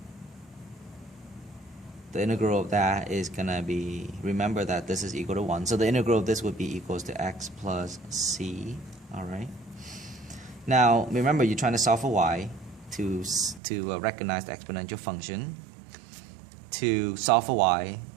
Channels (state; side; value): drops out; left; at 13.6 s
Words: The integral of that is going to be, remember that this is equal to 1. So the integral of this would be equals to x plus c. All right. Now, remember, you're trying to solve for y to recognize the exponential function. To solve for y,